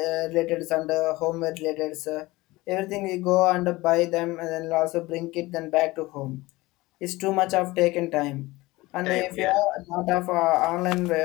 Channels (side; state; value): right; quieter; 20.4 dB